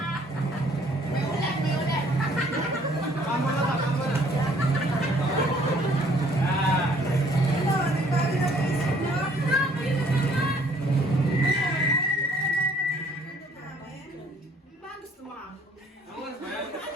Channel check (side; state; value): both; normal; correlation 0.60